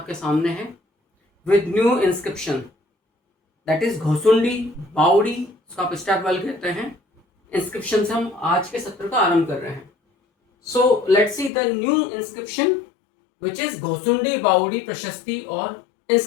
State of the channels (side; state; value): right; drops out; at 11.5 s